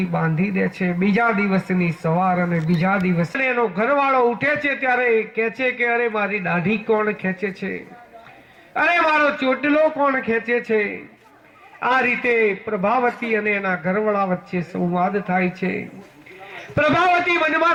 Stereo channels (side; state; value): both; identical; correlation 1.00